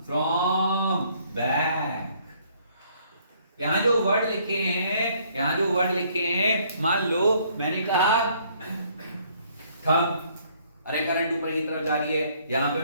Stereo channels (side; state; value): both; inverted; correlation -0.64